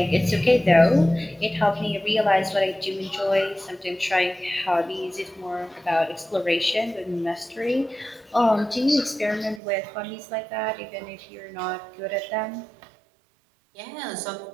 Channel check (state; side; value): drops out; left; at 9.6 s